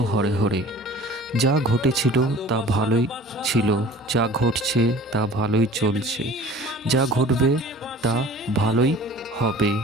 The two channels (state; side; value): normal; both; correlation 0.45